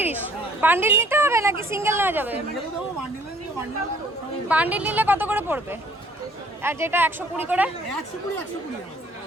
বান্ডিল নিতে হবে নাকি সিঙ্গেল নেওয়া যাবে? বান্ডিল নিলে কত করে পড়বে? আর যেটা 120 করে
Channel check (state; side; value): normal; both; correlation 0.58